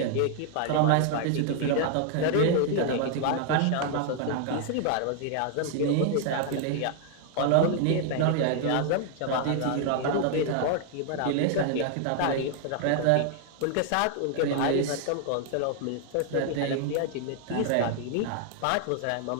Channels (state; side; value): different; both; correlation 0.00